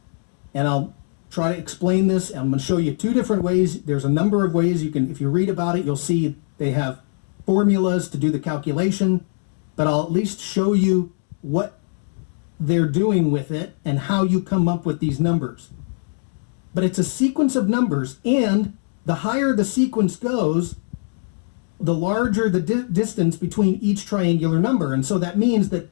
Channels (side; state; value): right; silent; digital silence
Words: and I'll try to explain this. I'm going to show you two different ways. There's a number of ways you can, if you read about it, you'll see they have formulas to do the calculation, but I'll at least show you what they're doing with it and how you come up with these numbers. But it's a sequence of numbers, and the higher the sequence goes, the larger the distance between each triangular number. And so that means